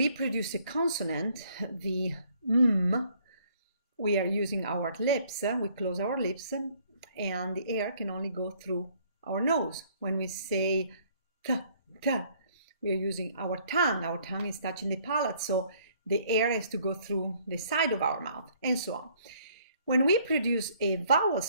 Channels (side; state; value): both; inverted; correlation -0.62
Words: produce a consonant, the we are using our lips, we close our lips, and the air can only go through our nose. When we say t, we are using our tongue is touching the palate, so the air has to go through the side of our mouth, and so on. When we produce a vowel